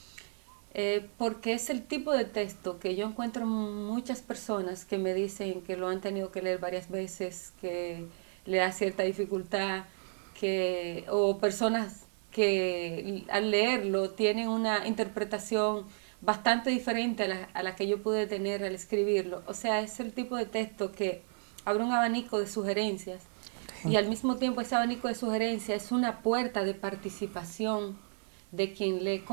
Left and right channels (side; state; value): left; silent; 56 dB below the other